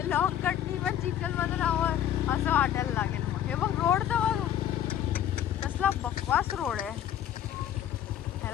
लॉंग कटनी पण चिखल मधून हवं असं वाटायला लागेल. मग हे बघ रोड तर बघ कसला बकवास रोड आहे.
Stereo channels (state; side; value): quieter; right; 10.5 dB